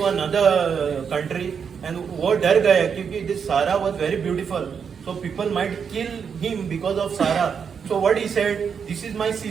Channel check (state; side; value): quieter; left; 6.7 dB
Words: another country and वो डर गया क्योंकि this Sarah was very beautiful, so people might kill him because of Sarah. So what he said, this is my